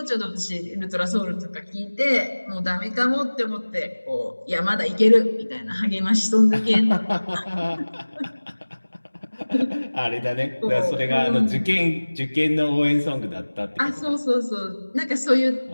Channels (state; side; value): inverted; both; correlation -1.00